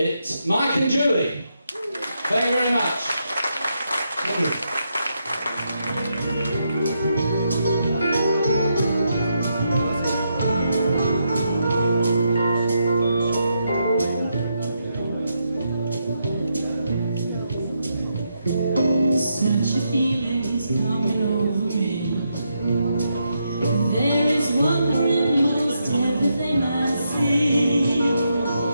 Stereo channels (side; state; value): both; inverted; correlation -0.81